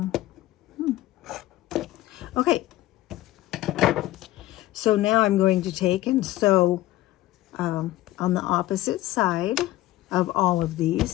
okay. So now I'm going to take and sew on the opposite side of all of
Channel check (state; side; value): quieter; right; 16.0 dB